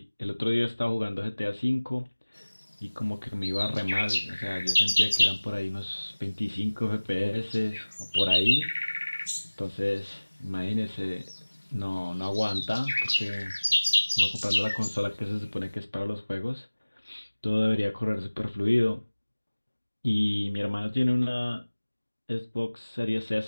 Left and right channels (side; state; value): both; inverted; correlation -1.00